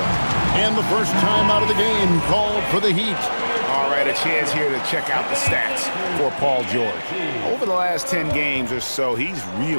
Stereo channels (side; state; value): both; inverted; correlation -1.00